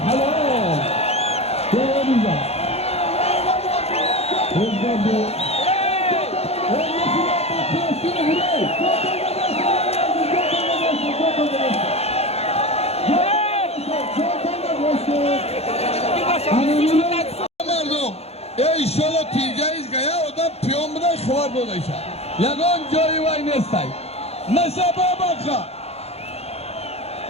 Özgürlüğü. مردم ایشالا تینجاییز گیا odam piyon buna خبر بودایشه یگان جایی وای نیستای نسبه بکا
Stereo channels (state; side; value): late; right; 0.30 ms